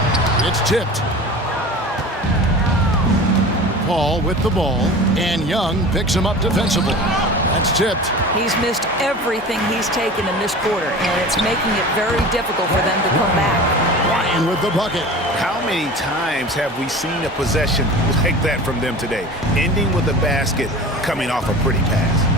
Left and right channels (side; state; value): both; normal; correlation 0.36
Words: It's tipped. Paul with the ball, and Young picks him up defensively. That's tipped. He's missed everything he's taken in this quarter, and it's making it very difficult for them to come back. Ryan with the bucket. How many times have we seen a possession like that from them today? Ending with a basket, coming off a pretty